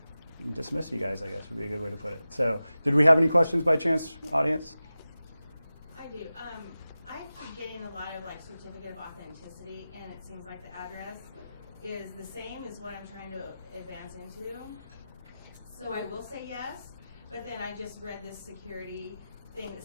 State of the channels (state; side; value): inverted; both; correlation -0.95